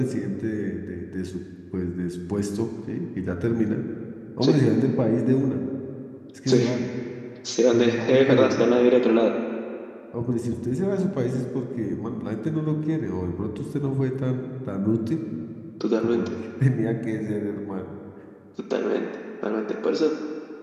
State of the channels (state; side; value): identical; both; correlation 1.00